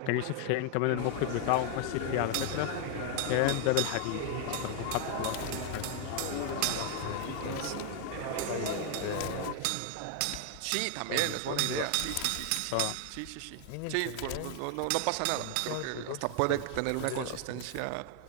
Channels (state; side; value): different; both; correlation 0.00